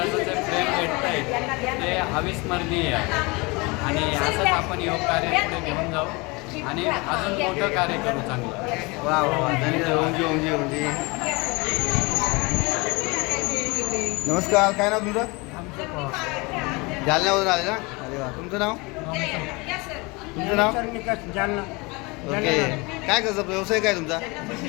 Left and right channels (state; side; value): quieter; right; 26.4 dB